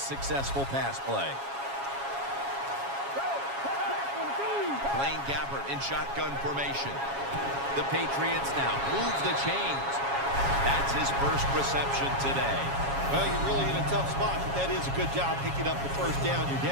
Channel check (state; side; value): late; left; 7.3 ms